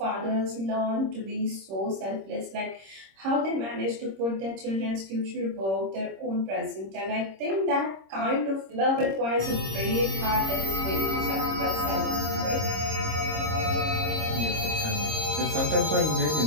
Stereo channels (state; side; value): late; left; 26 ms